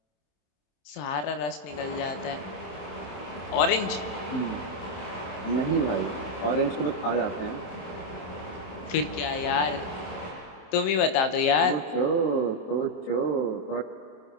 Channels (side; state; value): right; late; 27 ms